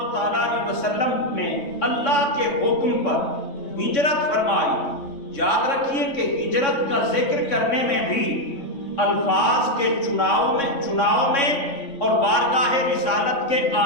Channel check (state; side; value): late; right; 3.6 ms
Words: تعالیٰ علیہ وسلم نے اللہ کے حکم پر ہجرت فرمائی، یاد رکھیے کہ ہجرت کا ذکر کرنے میں بھی الفاظ کے چناؤ میں اور بارگاہ رسالت کے